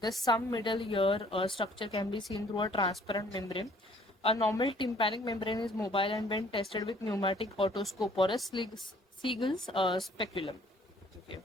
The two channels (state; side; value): normal; both; correlation 0.58